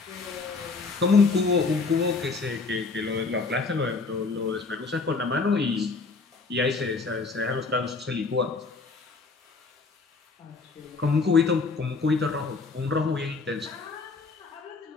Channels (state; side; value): quieter; right; 4.2 dB